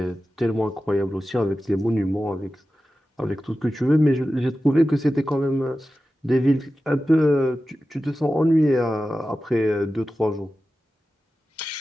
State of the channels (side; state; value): both; normal; correlation 0.94